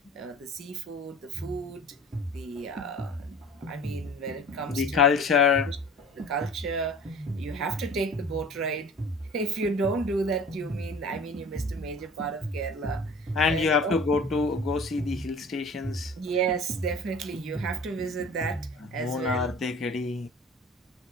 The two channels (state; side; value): normal; both; correlation 0.43